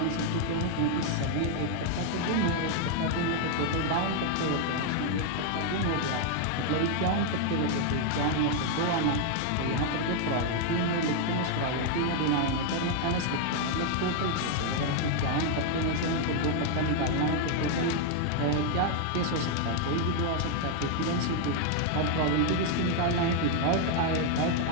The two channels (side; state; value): both; different; correlation 0.00